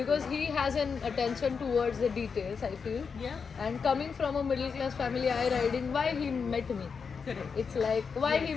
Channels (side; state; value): right; quieter; 5.7 dB